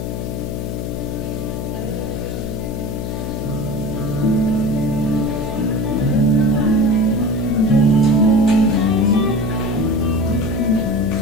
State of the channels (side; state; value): left; noise; hum, 4 dB below the sound